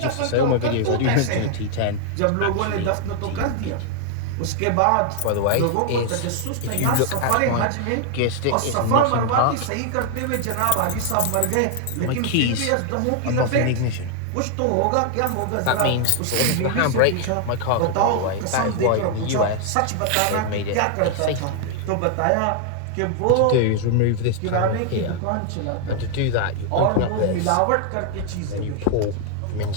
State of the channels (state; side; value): different; both; correlation 0.00